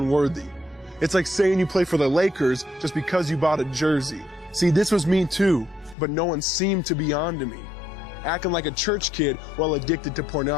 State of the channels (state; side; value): drops out; right; at 6.0 s